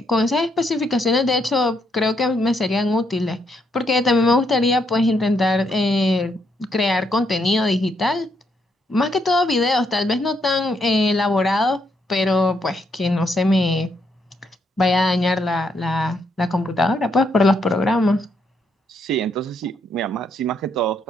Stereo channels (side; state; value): both; normal; correlation 0.76